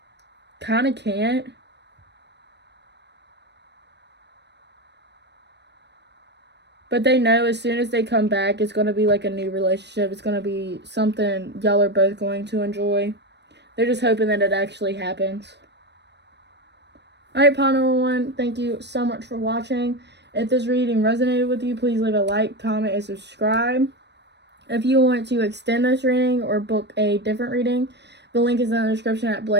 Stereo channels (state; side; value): late; left; 0.50 ms